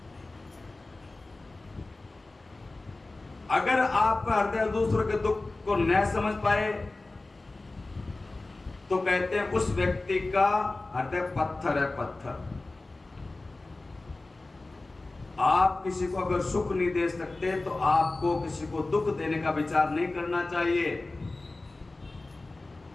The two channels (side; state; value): right; quieter; 3.1 dB